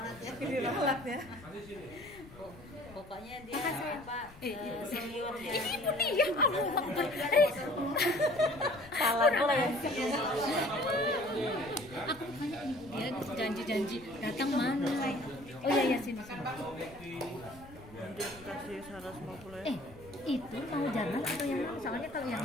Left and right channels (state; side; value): noise; left; rumble, 20 dB below the sound